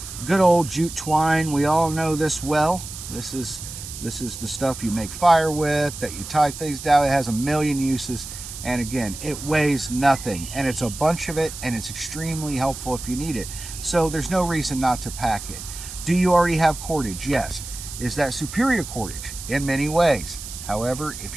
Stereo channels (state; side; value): noise; right; hiss, 11 dB below the sound